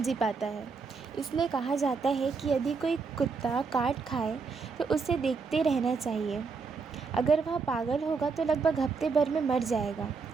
पाता है। इसलिए कहा जाता है कि यदि कोई कुत्ता काट खाए तो उसे देखते रहना चाहिए। अगर वह पागल होगा तो लगभग हफ्ते भर में मर जाएगा।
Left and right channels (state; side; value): quieter; left; 4.8 dB